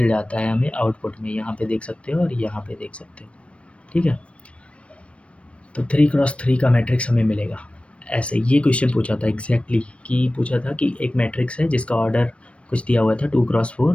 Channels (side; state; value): right; late; 0.061 ms